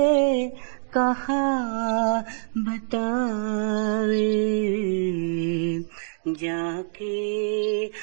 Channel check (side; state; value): left; silent; digital silence